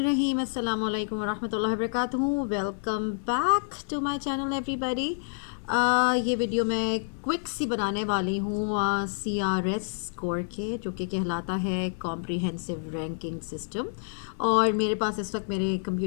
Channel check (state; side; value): silent; right; 59 dB below the other